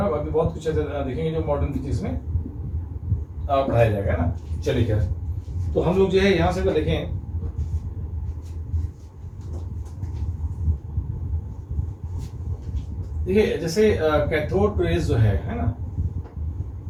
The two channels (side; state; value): both; identical; correlation 1.00